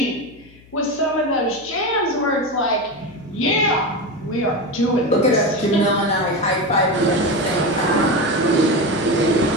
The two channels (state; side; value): noise; left; hum, 25 dB below the sound